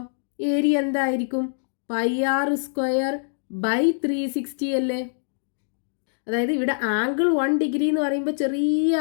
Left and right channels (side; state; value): right; silent; digital silence